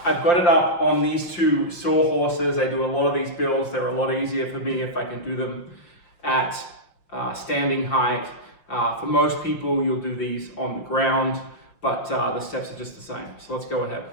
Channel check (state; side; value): late; right; 6.0 ms